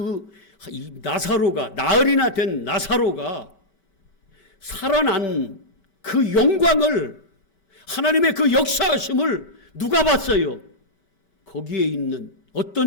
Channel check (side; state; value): right; late; 4.6 ms